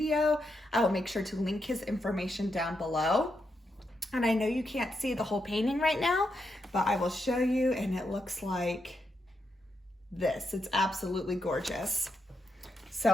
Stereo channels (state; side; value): normal; both; correlation 0.83